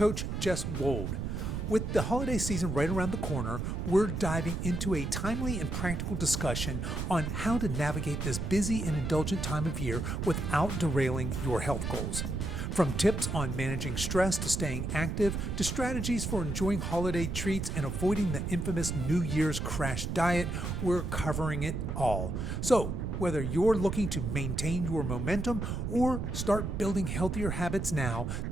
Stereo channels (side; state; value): right; noise; rumble, 3 dB below the sound